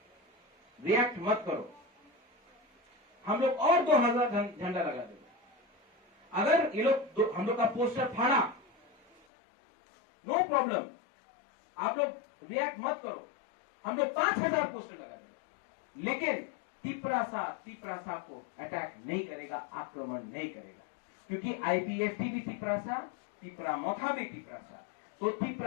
रिएक्ट मत करो, हम लोग और 2000 झंडा लगा देंगे। अगर ये लोग हम लोग का पोस्टर फाड़ा, नो प्रॉब्लम, आप लोग रिएक्ट मत करो, हम लोग 5000 पोस्टर लगा देंगे, लेकिन त्रिपुरासा को अटैक नहीं करेगा, आक्रमण नहीं करेगा, क्योंकि आईपीएफटी भी त्रिपुरासा, त्रिपुरा मोथा भी त्रिपुरासा। तो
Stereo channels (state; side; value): drops out; right; at 9.2 s